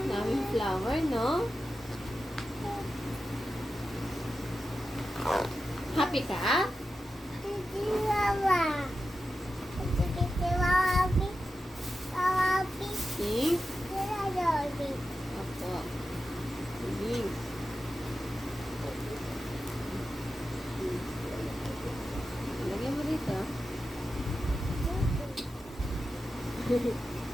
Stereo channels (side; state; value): both; normal; correlation 0.91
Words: Daming flower, no? Happy ka? Pink? Opo. Pink. Lagyan mo dito.